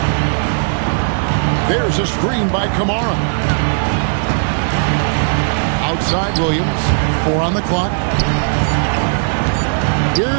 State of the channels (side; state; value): left; silent; digital silence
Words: There's a screen by Kamara. Outside Williams. 4 on the clock.